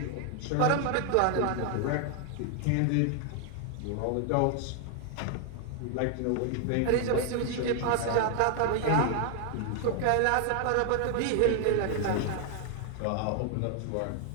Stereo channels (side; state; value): both; different; correlation 0.00